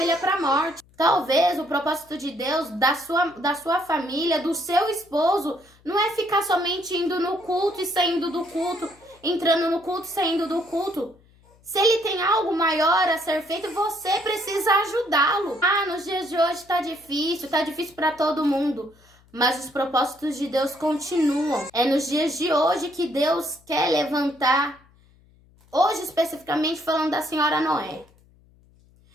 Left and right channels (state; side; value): noise; left; hum, 30 dB below the sound